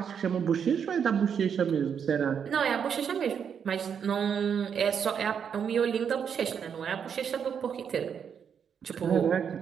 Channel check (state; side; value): quieter; left; 7.4 dB